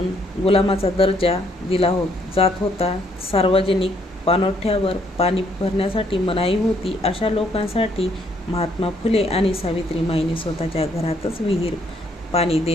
दर्जा दिला जात होता. सार्वजनिक पाणवठ्यावर पाणी भरण्यासाठी मनाई होती. अशा लोकांसाठी महात्मा फुले आणि सावित्रीमाईंनी स्वतःच्या घरातच विहीर पाणी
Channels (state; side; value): normal; both; correlation 0.69